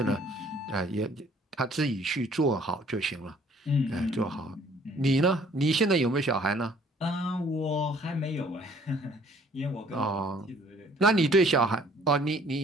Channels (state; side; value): normal; both; correlation 0.58